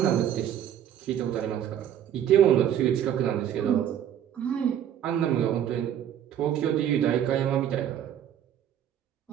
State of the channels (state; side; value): quieter; left; 10.1 dB